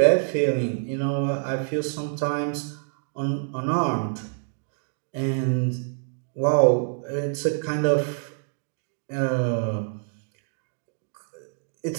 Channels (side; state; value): left; silent; digital silence